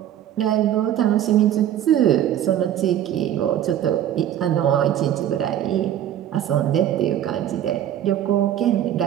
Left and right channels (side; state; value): left; quieter; 11.1 dB